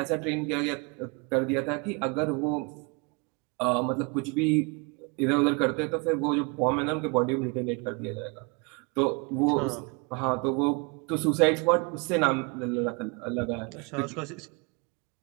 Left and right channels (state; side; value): quieter; left; 31.1 dB